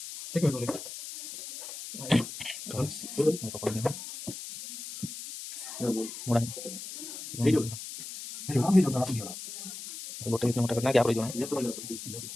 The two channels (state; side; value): noise; left; hiss, 10 dB below the sound